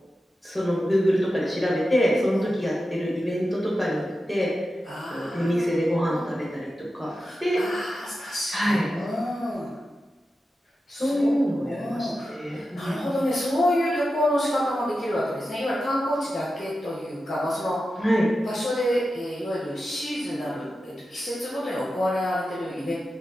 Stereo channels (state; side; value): normal; both; correlation 0.91